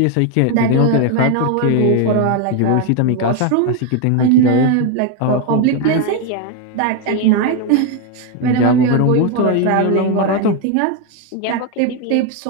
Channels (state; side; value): different; both; correlation 0.01